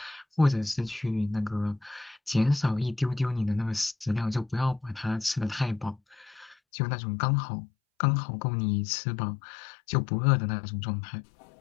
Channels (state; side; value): drops out; right; at 6.6 s